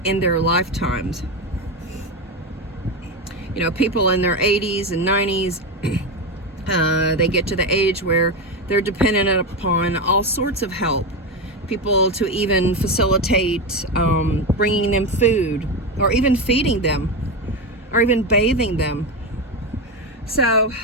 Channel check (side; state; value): both; normal; correlation 0.14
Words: in their lifetimes. You know, people in their 80s and 90s, they get to the age where they're dependent upon all sorts of help. People to even facilitate bringing them food, or even feeding them, or even bathing them. So,